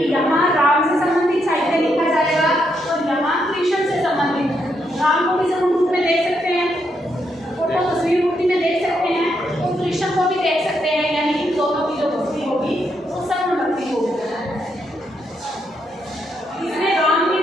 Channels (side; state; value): both; normal; correlation 0.78